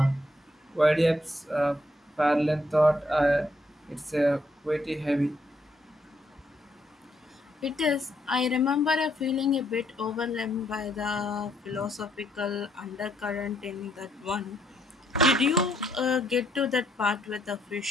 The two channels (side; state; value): both; normal; correlation 0.73